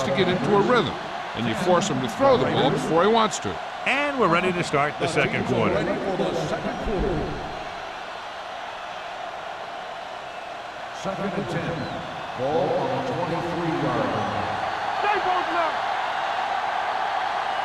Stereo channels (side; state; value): both; identical; correlation 1.00